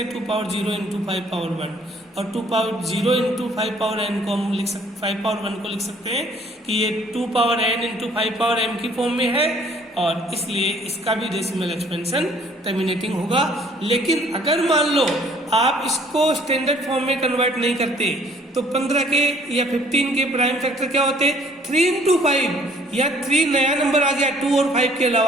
2 पावर 0 इंटू 5 पावर 1, और 2 पावर 0 इंटू 5 पावर n को हम लिख सकते 5 पावर 1 को लिख सकते हैं कि ये 2 power n into 5 power m की फॉर्म में है, और इसलिए इसका भी डेसिमल एक्सपेंशन टर्मिनेटिंग होगा। लेकिन अगर मान लो आप इसको स्टैंडर्ड फॉर्म में कन्वर्ट नहीं करते, तो 15 के या 15 के प्राइम फैक्टर क्या होते, 3 इंटू 5, या 3 नया नंबर आ गया 2 और 5 के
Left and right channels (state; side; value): normal; both; correlation 0.59